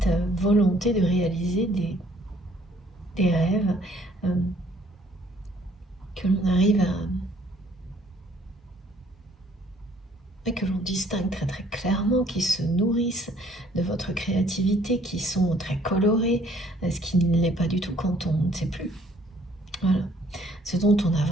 volonté de réaliser des rêves, que l'on arrive mais que l'on distingue très très clairement, qui se nourrissent de votre créativité, qui sont très colorés, ce qui ne l'est pas du tout quand on ne sait plus. Voilà. Ce dont on a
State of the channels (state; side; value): normal; both; correlation 0.61